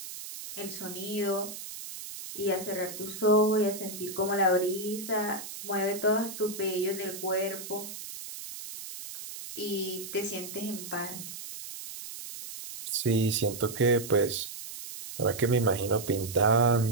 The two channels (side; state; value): right; noise; hiss, 10 dB below the sound